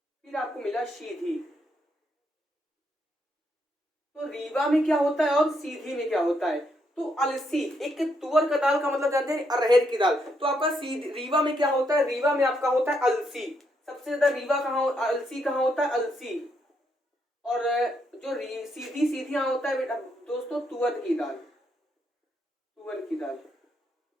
फिर आपको मिला सीधी। तो रीवा में क्या होता है और सीधी में क्या होता है, तो अलसी। एक तुअर का दाल का मतलब जानते हैं, अरहर की दाल। तो आपका रीवा में क्या होता है, रीवा में आपका होता है अलसी। सबसे ज्यादा रीवा कहाँ, अलसी कहाँ होता है, अलसी। और जो सीधी सीधी यहाँ होता है बेटा दोस्तों, तुअर की दाल। तुअर की दाल,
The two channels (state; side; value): normal; both; correlation 0.77